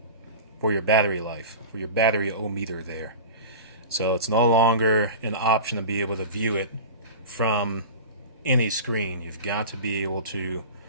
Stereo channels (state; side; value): inverted; both; correlation -0.33